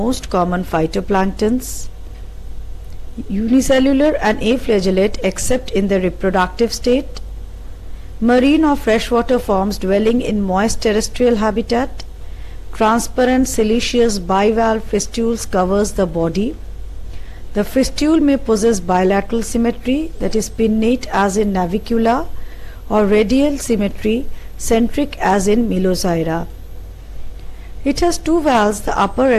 common phytoplanktons. Unicellular and aflagellate except in the reproductive state. Marine or freshwater forms dwelling in moist terrestrial habitat. Transparent siliceous bivalve fistules covers the body. The fistule may possess bilateral symmetry, that is pinnate as in Navicula, or radial symmetry, centric as in Melozyra. It has two valves, the upper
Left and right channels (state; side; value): identical; both; correlation 1.00